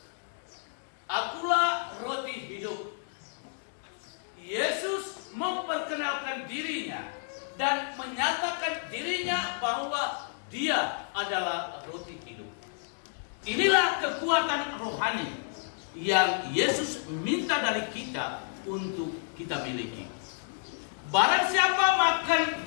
Akulah roti hidup. Yesus memperkenalkan dirinya dan menyatakan dirinya bahwa Dia adalah roti hidup. Inilah kekuatan rohani yang Yesus minta dari kita untuk kita miliki. Barang siapa makan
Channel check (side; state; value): right; silent; digital silence